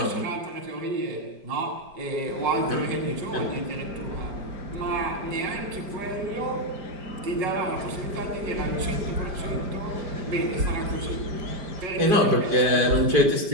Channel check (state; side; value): late; left; 5.0 ms